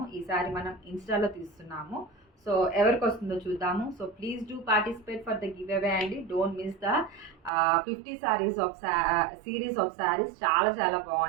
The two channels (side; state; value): left; drops out; at 7.5 s